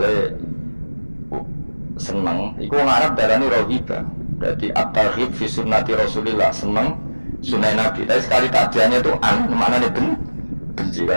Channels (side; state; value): both; inverted; correlation -1.00